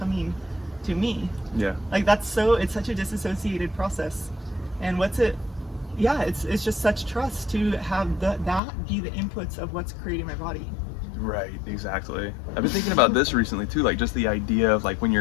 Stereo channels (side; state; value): right; drops out; at 8.6 s